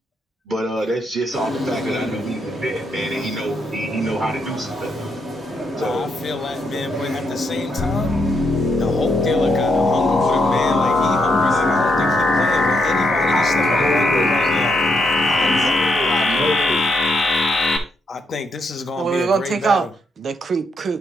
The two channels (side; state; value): both; normal; correlation 0.78